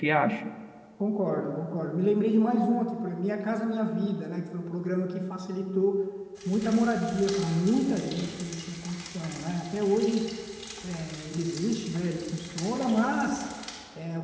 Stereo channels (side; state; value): both; identical; correlation 1.00